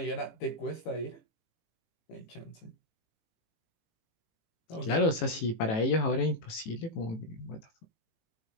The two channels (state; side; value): late; right; 18 ms